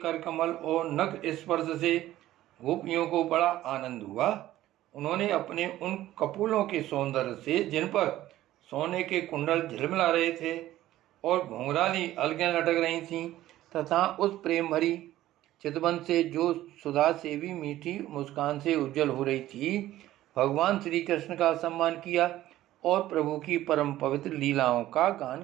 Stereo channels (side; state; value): left; quieter; 14.5 dB